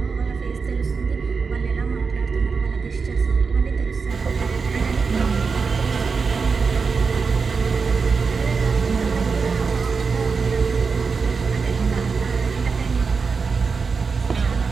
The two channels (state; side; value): quieter; left; 5.0 dB